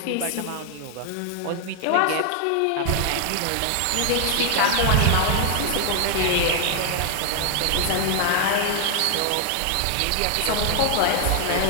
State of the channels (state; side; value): different; both; correlation 0.00